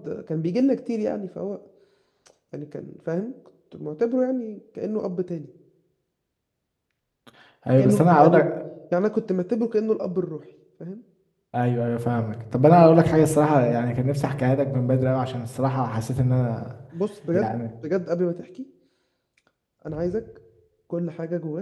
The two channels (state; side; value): identical; both; correlation 1.00